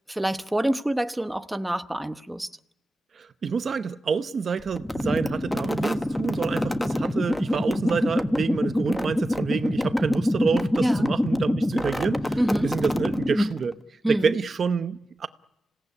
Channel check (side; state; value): both; normal; correlation 0.93